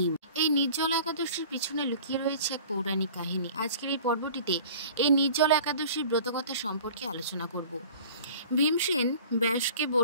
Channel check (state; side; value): inverted; both; correlation -0.44